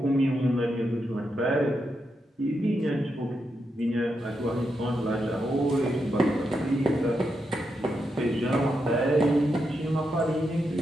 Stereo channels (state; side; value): normal; both; correlation 0.84